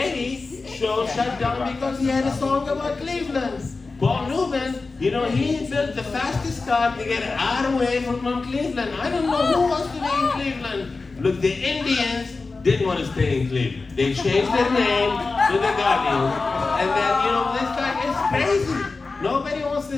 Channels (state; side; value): quieter; right; 3.9 dB